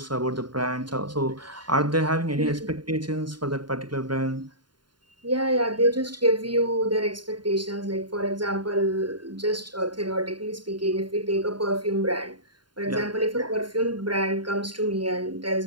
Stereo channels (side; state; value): left; late; 0.71 ms